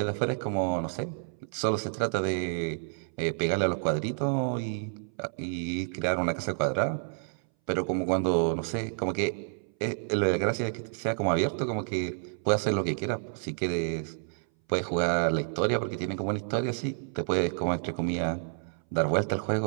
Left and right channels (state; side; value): silent; left; 58 dB below the other